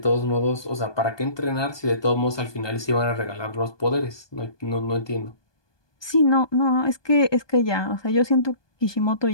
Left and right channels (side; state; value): right; late; 1.2 ms